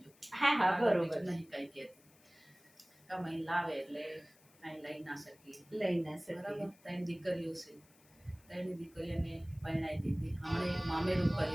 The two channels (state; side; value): noise; left; hiss, 28 dB below the sound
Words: જો. હા હા, બરોબર. નહીં કાંઈ કહેતી. કમાઈ લાવે એટલે કાંઈ લઈ ના શકીએ. લઈ ના શકીએ. બરાબર. 3 દીકરીઓ છે, 3 દીકરીઓને પરણાવી દીધી. હમણાં એક મામેરું